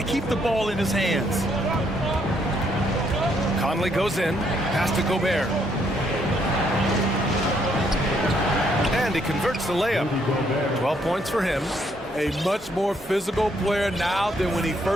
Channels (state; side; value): normal; both; correlation 0.71